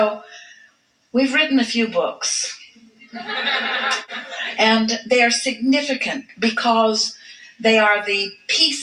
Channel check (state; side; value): identical; both; correlation 1.00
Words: we've written a few books. And they are significant because they are the